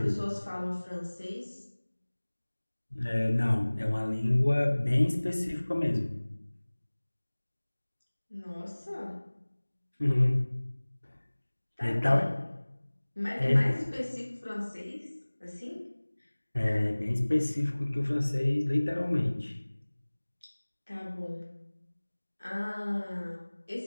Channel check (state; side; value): inverted; both; correlation -1.00